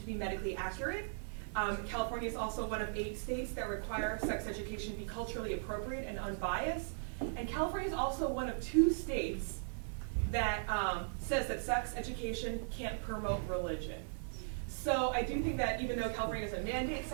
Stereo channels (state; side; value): silent; left; digital silence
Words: be medically accurate. California is also one of 8 states that require sex education to be culturally appropriate and unbiased. And California is also one of 2 states that says that sex education can't promote religion. So I do think that even though California doesn't mandate